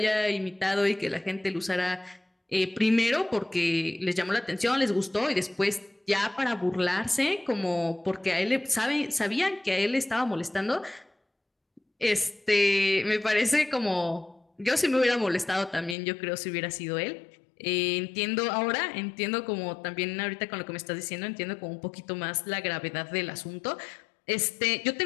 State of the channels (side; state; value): right; drops out; at 16.0 s